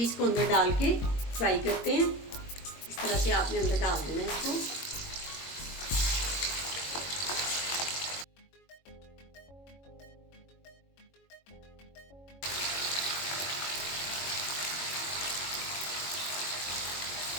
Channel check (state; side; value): late; right; 22 ms